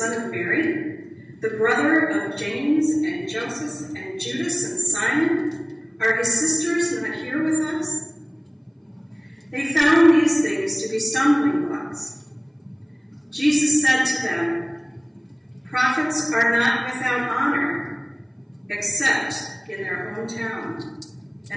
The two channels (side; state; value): both; identical; correlation 1.00